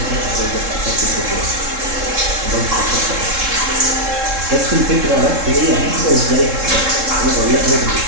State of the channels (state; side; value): late; left; 3.7 ms